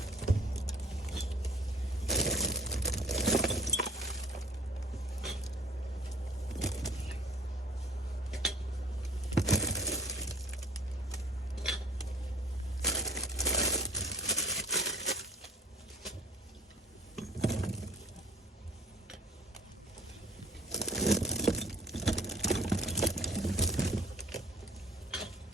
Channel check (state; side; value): normal; both; correlation 0.53